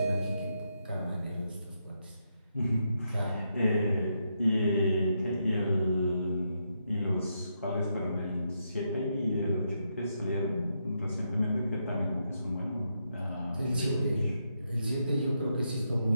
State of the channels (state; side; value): inverted; both; correlation -0.81